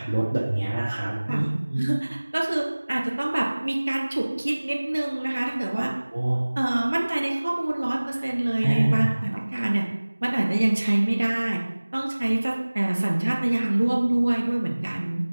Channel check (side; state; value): both; inverted; correlation -1.00